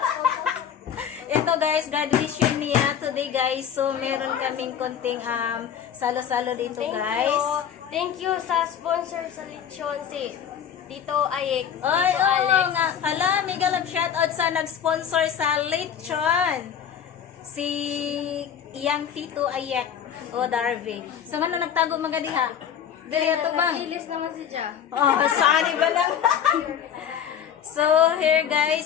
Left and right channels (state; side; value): quieter; right; 8.7 dB